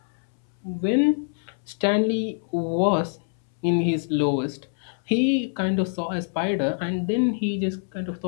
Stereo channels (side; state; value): right; silent; 62 dB below the other